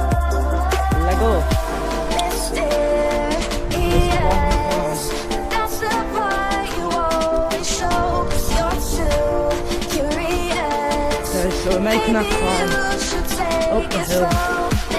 Let go. So we're making our climb up the hill,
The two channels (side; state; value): both; identical; correlation 1.00